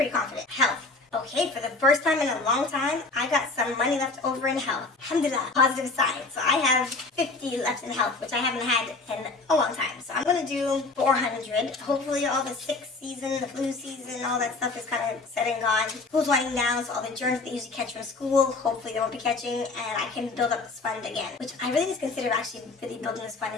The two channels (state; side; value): quieter; right; 3.6 dB